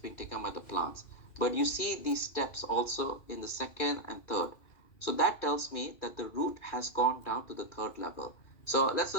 taken by the plants. But you see these steps also in the second and third. So that tells me that the root has gone down to the third level. So let's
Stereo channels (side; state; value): right; late; 2.3 ms